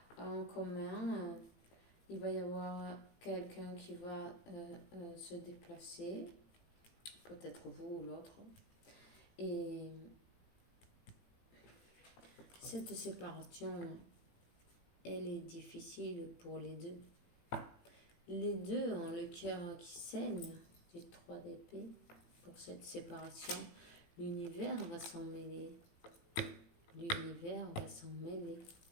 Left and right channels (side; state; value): right; late; 18 ms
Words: en commun. Il va y avoir quelqu'un qui va se déplacer. Peut-être vous ou l'autre. Et cette séparation, elle est difficile pour les deux. Les deux ont le cœur qui saigne du 3 d'épée. Pour cette séparation, l'univers va s'en mêler. L'univers va s'en mêler.